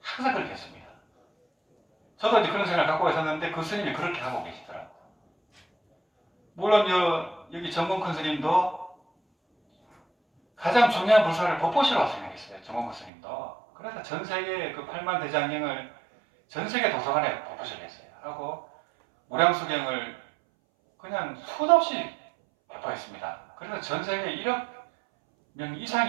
항상 그렇게 했습니다. 저도 이제 그런 생각을 갖고 있었는데 그 스님이 그렇게 하고 계시더라고요. 물론 여기 정봉큰 스님도 가장 중요한 불사를 법보시라고 생각했어요. 정봉큰 스님도. 그래서 전 세계 그 8만 대장경을 전 세계 도서관에 법보시를 했어요. 하고 무량수경을 그냥 수도 없이 배포했습니다. 그래서 전 세계 1억 명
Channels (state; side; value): drops out; left; at 13.1 s